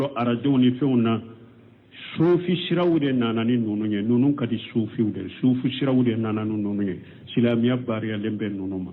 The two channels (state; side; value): identical; both; correlation 1.00